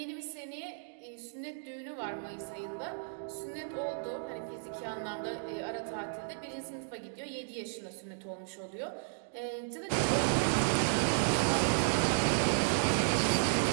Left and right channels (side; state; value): left; silent; digital silence